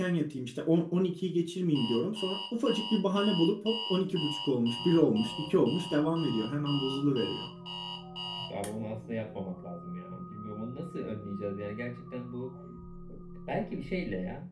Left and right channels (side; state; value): both; identical; correlation 1.00